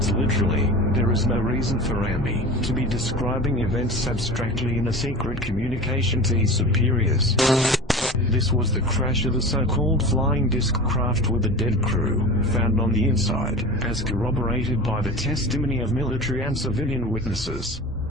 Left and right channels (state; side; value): normal; both; correlation 0.33